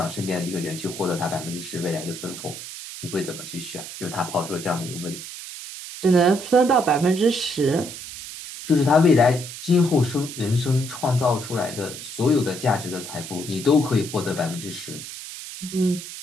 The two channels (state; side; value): noise; right; hiss, 11 dB below the sound